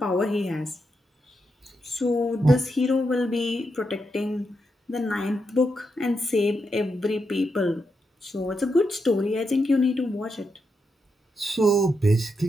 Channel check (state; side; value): normal; both; correlation 0.84